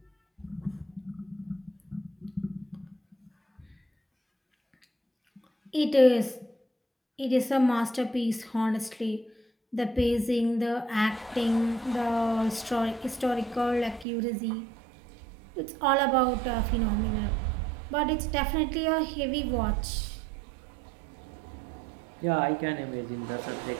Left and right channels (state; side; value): drops out; left; at 14.1 s